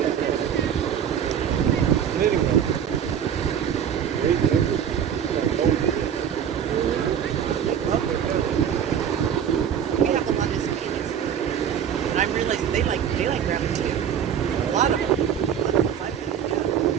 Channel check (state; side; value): quieter; left; 8.7 dB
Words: We have the one that's peanuts. And I realized they like rabbit too. A lot of them.